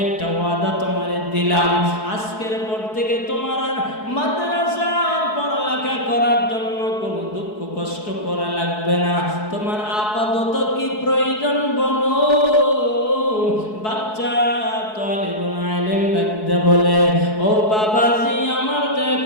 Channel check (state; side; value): late; right; 4.7 ms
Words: একটা ওয়াদা তোমারে দিলাম, আজকের পর থেকে তোমার আর মাদ্রাসার পড়ালেখা করার জন্য কোনো দুঃখ কষ্ট করা লাগবে না। তোমার আপাতত কি প্রয়োজন বলো। বাচ্চা তালিবুল ইলম ডাকতে বলে, ও বাবাজি, আমার তো